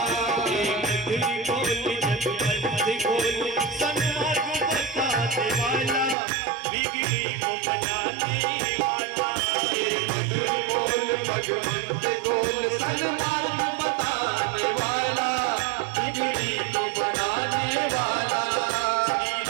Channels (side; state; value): left; drops out; at 6.2 s